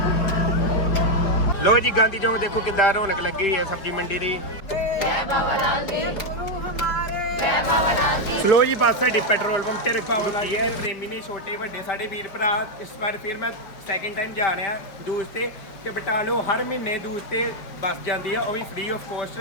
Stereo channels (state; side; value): late; right; 4.9 ms